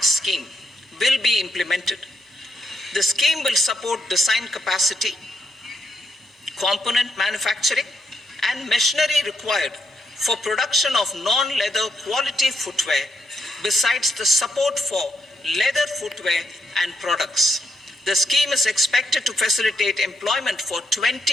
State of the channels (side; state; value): both; normal; correlation 0.80